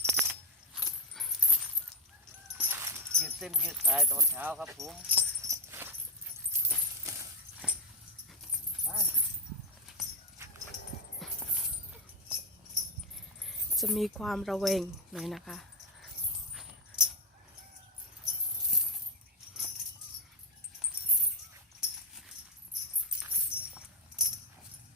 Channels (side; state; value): both; normal; correlation 0.09